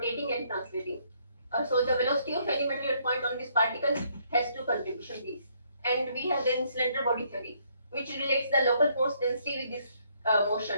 and translating. So the velocity of any material point on this particle has two contribution V's. And we have then cylinder body theory, which relates the local force density with this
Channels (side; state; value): both; inverted; correlation -0.69